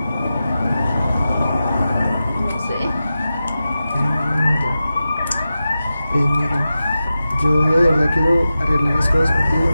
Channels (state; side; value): inverted; both; correlation -0.93